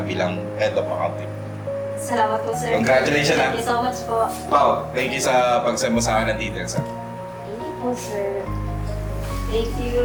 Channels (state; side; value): identical; both; correlation 1.00